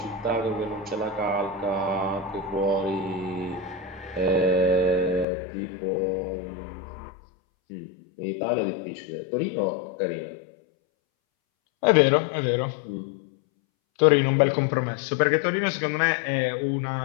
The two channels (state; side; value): drops out; right; at 5.2 s